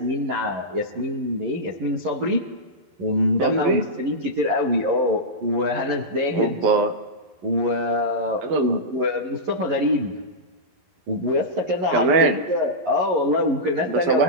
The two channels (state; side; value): late; left; 11 ms